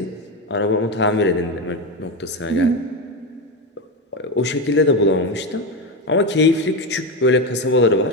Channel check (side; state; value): both; normal; correlation 0.14